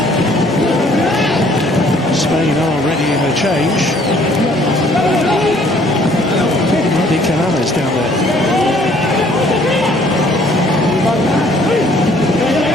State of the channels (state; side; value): normal; both; correlation 0.60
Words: Spain are ready in a change. Mehdi Canales down there.